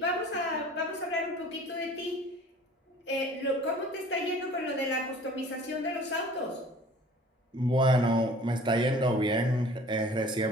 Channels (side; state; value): both; normal; correlation 0.48